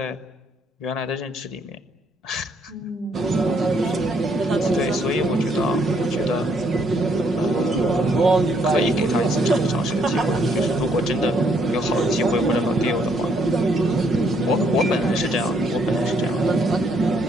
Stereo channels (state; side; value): normal; both; correlation 0.70